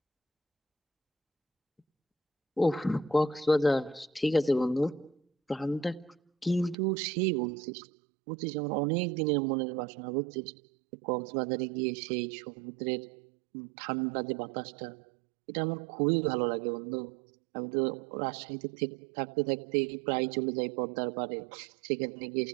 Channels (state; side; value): drops out; left; at 6.8 s